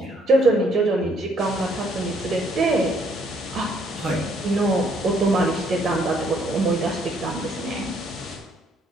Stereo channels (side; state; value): both; normal; correlation 0.67